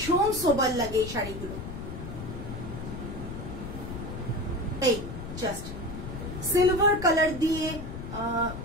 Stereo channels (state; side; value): noise; left; rumble, 8 dB below the sound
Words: সোবার লাগে এই শাড়িগুলো। এই জাস্ট সিলভার কালার দিয়ে